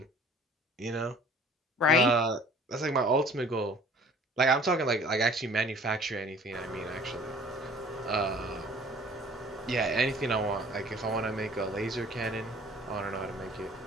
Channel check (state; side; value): normal; both; correlation 0.51